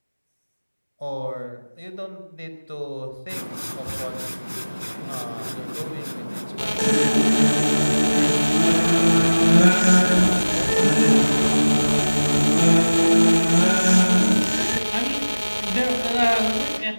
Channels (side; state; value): both; inverted; correlation -1.00